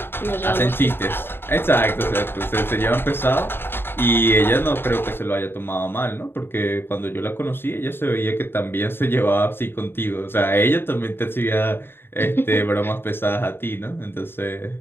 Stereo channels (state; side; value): late; right; 0.11 ms